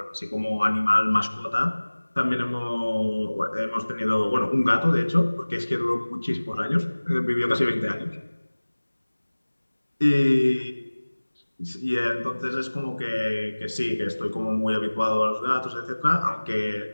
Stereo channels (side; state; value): both; inverted; correlation -1.00